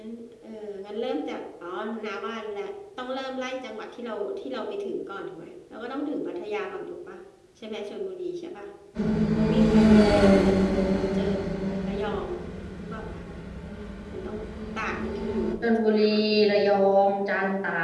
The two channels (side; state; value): both; identical; correlation 1.00